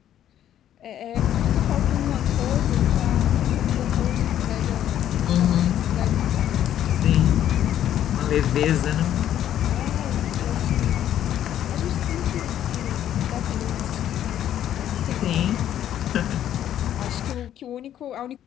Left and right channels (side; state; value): right; quieter; 11.1 dB